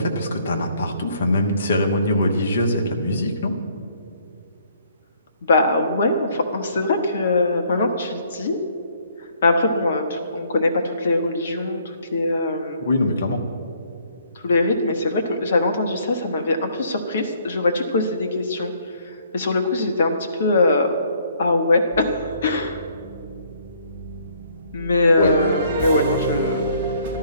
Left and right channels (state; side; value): inverted; both; correlation -0.64